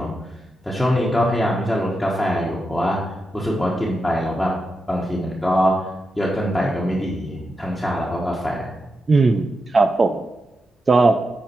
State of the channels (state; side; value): normal; both; correlation 0.87